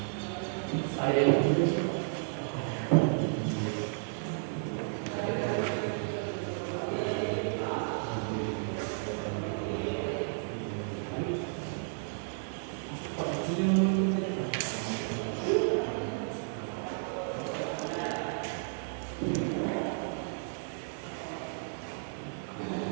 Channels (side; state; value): left; silent; digital silence